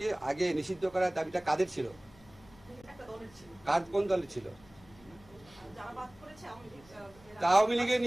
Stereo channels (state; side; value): noise; left; hum, 25 dB below the sound